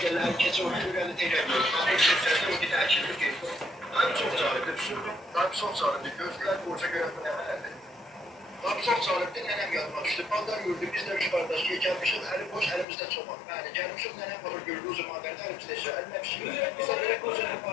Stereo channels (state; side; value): drops out; right; at 12.9 s